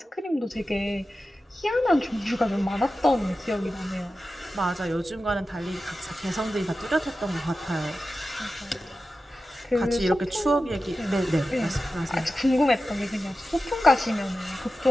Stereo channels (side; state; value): both; normal; correlation 0.93